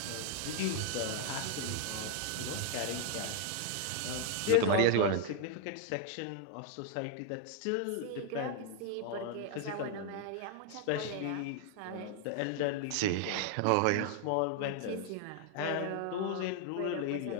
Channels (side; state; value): both; different; correlation 0.00